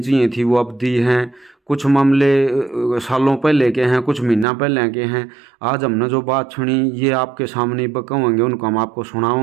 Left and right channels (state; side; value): drops out; left; at 4.5 s